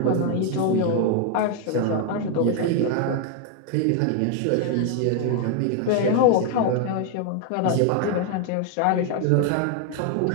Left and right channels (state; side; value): different; both; correlation 0.01